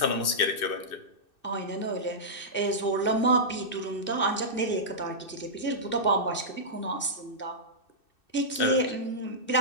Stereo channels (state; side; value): late; right; 2.6 ms